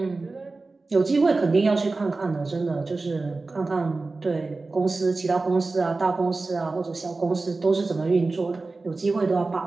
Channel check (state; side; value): quieter; left; 3.6 dB